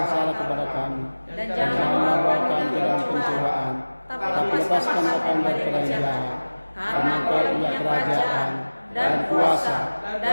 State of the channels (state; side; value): inverted; both; correlation -1.00